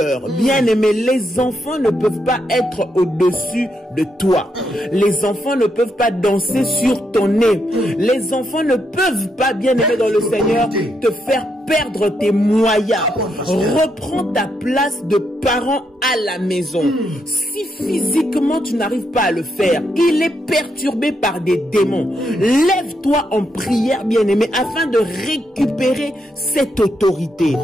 Bien-aimé, les enfants ne peuvent pas être au-dessus de toi. Les enfants ne peuvent pas danser sur ton nez. Les enfants ne peuvent pas, bien-aimé dans le Seigneur, te faire perdre tes moyens. Reprends ta place de parent à la maison. Si physiquement tu n'arrives pas à le faire, il est perturbé par des démons. Lève-toi en prière, bien-aimé, afin de récupérer cette autorité.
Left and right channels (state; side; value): normal; both; correlation 0.80